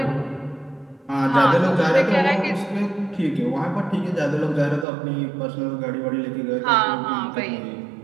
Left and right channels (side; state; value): left; drops out; at 4.9 s